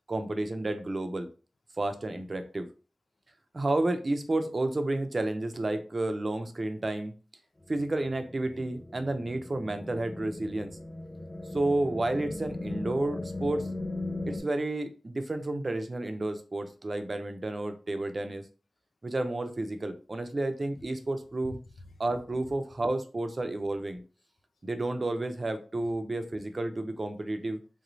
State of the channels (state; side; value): normal; both; correlation 0.97